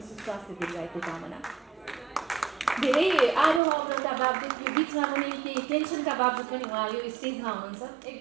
सुस्वास्थ्य दीर्घायुको कामना। धेरै आरोह अवरोधका बावजुद यो बिचमा पनि केही टेन्सनका बावजुद पनि उहाँ यो स्टेजमा हुनुहुन्छ।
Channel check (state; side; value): drops out; left; at 3.6 s